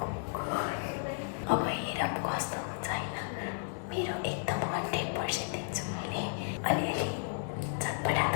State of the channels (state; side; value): silent; right; digital silence